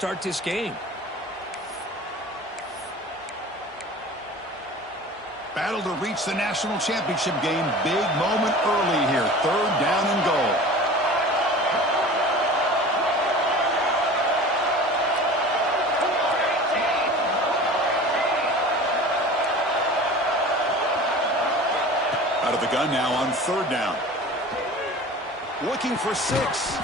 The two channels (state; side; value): normal; both; correlation 0.39